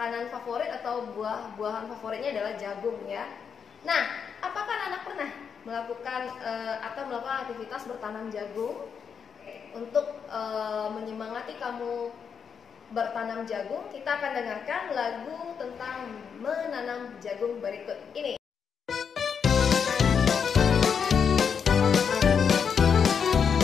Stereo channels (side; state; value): right; quieter; 6.8 dB